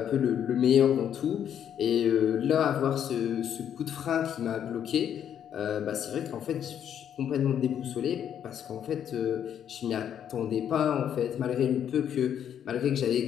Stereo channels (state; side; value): quieter; right; 9.3 dB